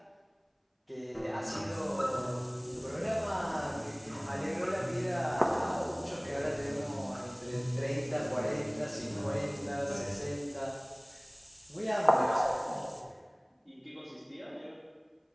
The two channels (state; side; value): identical; both; correlation 1.00